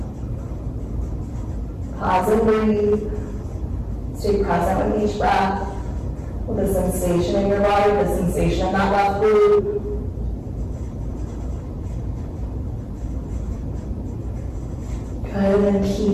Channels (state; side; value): identical; both; correlation 1.00